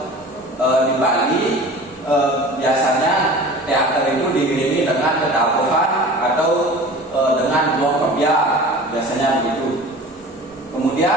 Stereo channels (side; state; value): both; normal; correlation 0.40